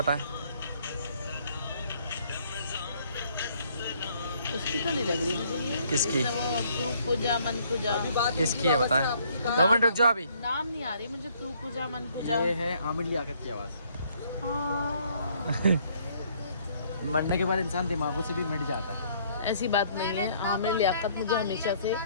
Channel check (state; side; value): inverted; both; correlation -0.64